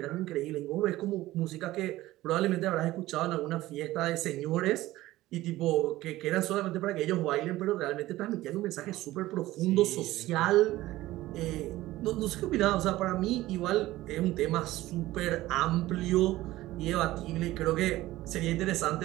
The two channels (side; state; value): left; quieter; 16.7 dB